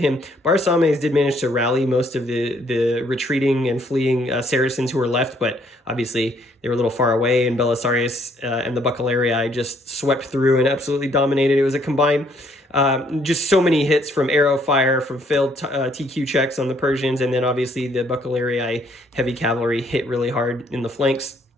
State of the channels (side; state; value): both; normal; correlation 0.66